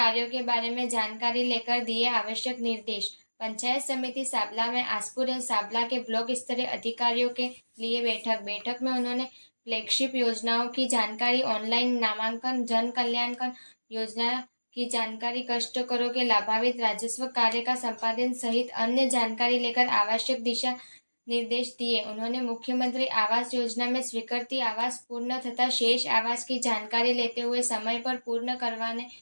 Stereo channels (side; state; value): both; inverted; correlation -1.00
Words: के बारे में जानकारी लेकर दिए आवश्यक निर्देश। पंचायत समिति साबला में आसपुर एवं साबला के ब्लॉक स्तरीय अधिकारियों के लिए बैठक में उन्होंने फ्लैगशिप योजनाओं की जानकारी, ऑनलाइन नामांकन, जन कल्याण योजना की जानकारी, कष्ट करो के लाभान्वित राजस्व कार्य का संपादन सहित अन्य जानकारी लेकर आवश्यक दिशा निर्देश दिए। उन्होंने मुख्यमंत्री आवास योजना में स्वीकृति आवास पूर्ण तथा शेष आवास की जानकारी लेते हुए समय पर पूर्ण करवाने